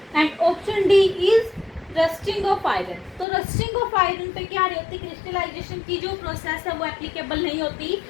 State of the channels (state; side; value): drops out; right; at 3.2 s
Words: and option D is rusting of iron. तो rusting of iron पे क्या नहीं होती? Crystallisation की जो process है वो applicable नहीं होती।